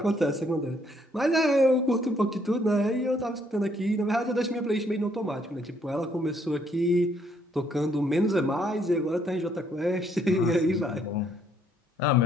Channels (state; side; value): normal; both; correlation 0.69